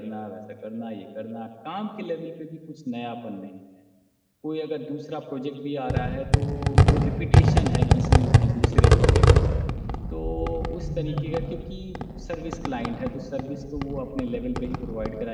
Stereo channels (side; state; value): both; identical; correlation 1.00